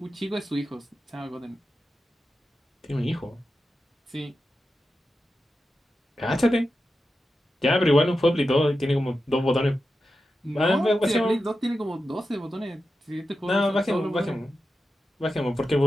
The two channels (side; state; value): both; normal; correlation 0.91